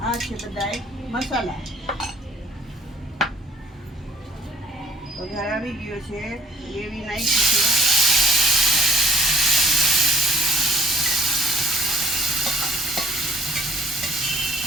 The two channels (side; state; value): both; normal; correlation 0.57